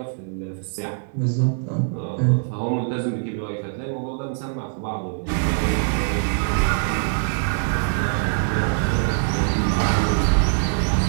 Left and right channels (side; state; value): left; silent; digital silence